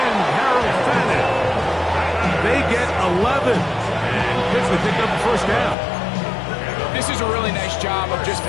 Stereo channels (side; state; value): right; drops out; at 5.8 s